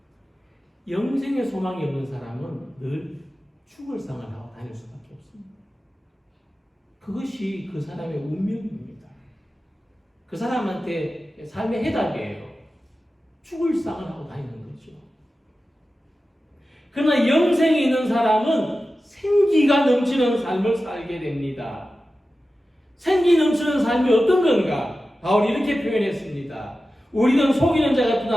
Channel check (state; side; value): normal; both; correlation 0.94